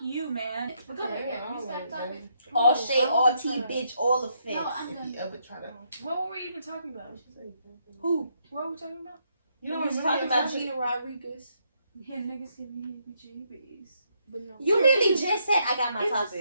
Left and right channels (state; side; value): inverted; both; correlation -0.75